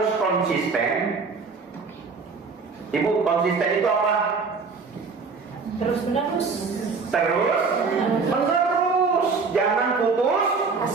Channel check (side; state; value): left; quieter; 4.8 dB